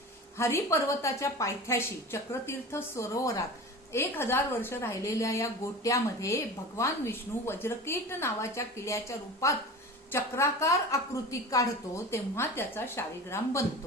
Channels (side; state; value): both; normal; correlation 0.33